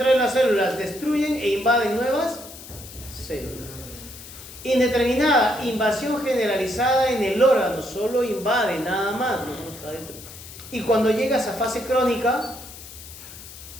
de las células, destruyen e invaden nuevas células. Indeterminada, invasión generalizada en el órgano, solo invade, nada más, no está dentro. Y cuando llegas a fase crónica,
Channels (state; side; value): noise; left; hiss, 15 dB below the sound